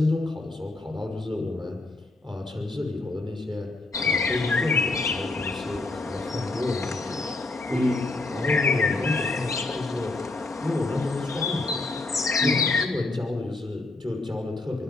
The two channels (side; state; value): right; quieter; 3.1 dB